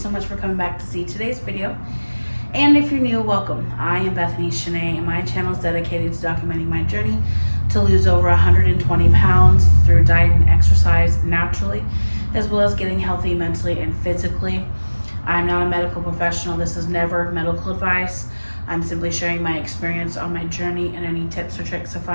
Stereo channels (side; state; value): both; inverted; correlation -1.00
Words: so much for coming back to see today's video. And if you're new, welcome. I am Bethany Shanae, and my channel is dedicated to documenting my journey to lose over 120 pounds through diet and exercise naturally, as well as getting healthy mentally and physically. I'm not a medical professional. This is never medical advice. I'm simply sharing my experience on my journey and any tips or tricks I